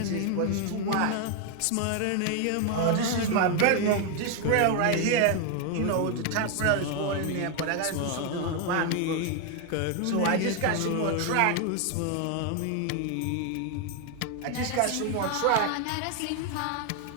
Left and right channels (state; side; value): different; both; correlation 0.01